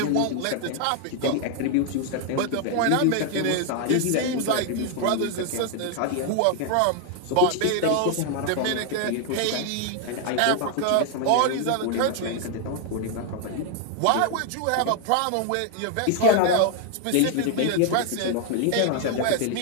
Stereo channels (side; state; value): both; different; correlation 0.00